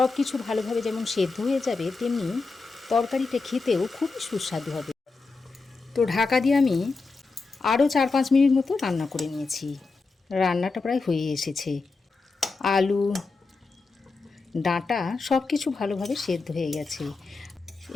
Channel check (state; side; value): quieter; right; 4.0 dB